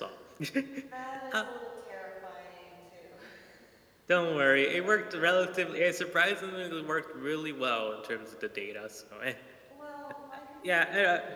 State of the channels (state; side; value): identical; both; correlation 1.00